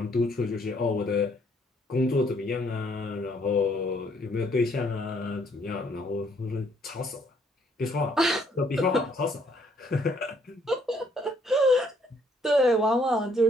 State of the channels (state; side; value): normal; both; correlation 0.66